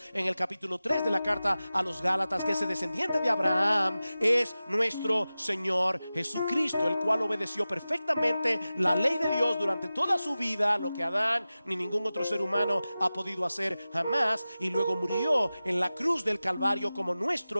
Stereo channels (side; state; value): both; inverted; correlation -0.95